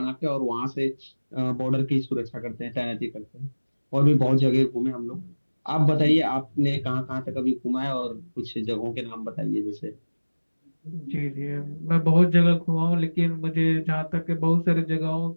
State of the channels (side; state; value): both; inverted; correlation -1.00